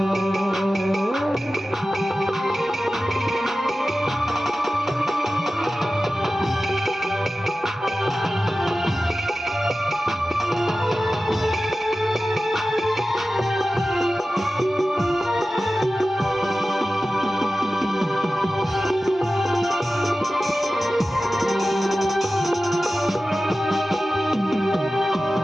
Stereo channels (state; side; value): normal; both; correlation 0.95